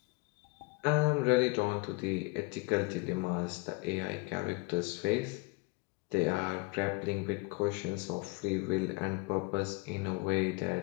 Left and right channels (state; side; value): quieter; right; 26.4 dB